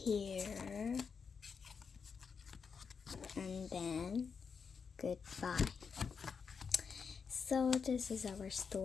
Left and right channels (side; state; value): right; quieter; 5.9 dB